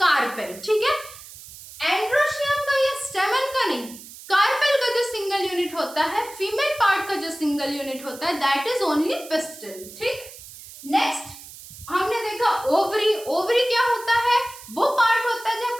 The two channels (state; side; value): noise; right; hiss, 16 dB below the sound